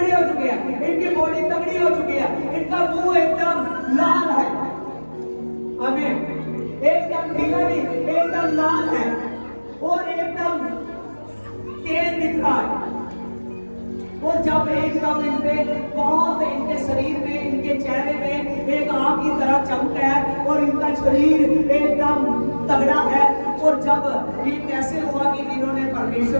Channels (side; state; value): both; inverted; correlation -1.00